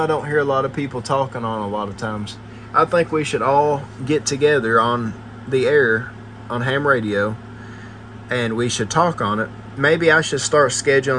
don't hear a lot of people talking on a lot of times. I think we should all get together on the air on ham radio, and we should talk on it. Maybe I should start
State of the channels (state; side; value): identical; both; correlation 1.00